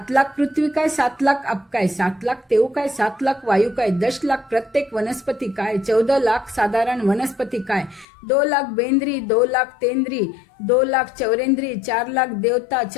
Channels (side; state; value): right; drops out; at 8.1 s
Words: लाख पृथ्वी काय 7 लाख अप काय 7 लाख तेव काय 7 लाख वायू काय 10 लाख प्रत्येक वनस्पती काय 14 लाख साधारण वनस्पती काय 2 लाख बेंद्री 2 लाख तेंद्री 2 लाख चौरेंद्री 4 लाख देवता